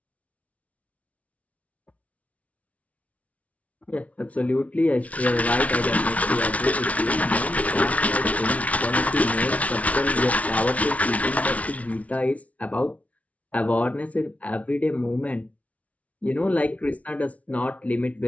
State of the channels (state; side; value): late; right; 0.067 ms